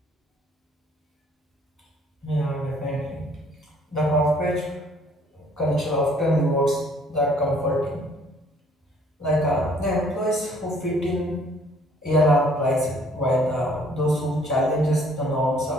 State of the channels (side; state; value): both; normal; correlation 0.60